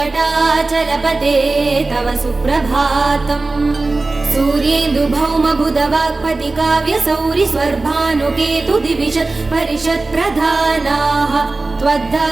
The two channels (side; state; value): left; quieter; 3.4 dB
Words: तव सुप्रभातम् सूर्येन्दुभौमबुधवाक्पति काव्यसौरि स्वर्भानुकेतु दिविशत् परिषत् प्रधानाः